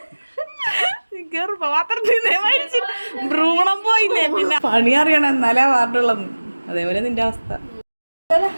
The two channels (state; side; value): inverted; both; correlation -1.00